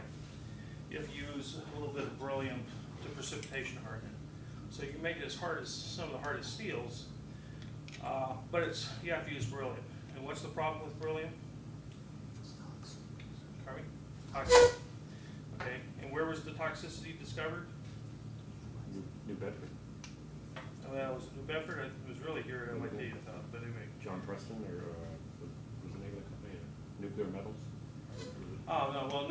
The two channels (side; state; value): both; identical; correlation 1.00